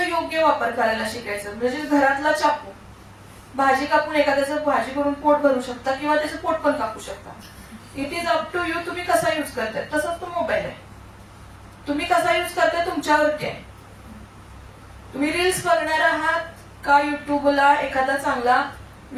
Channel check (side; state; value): both; identical; correlation 1.00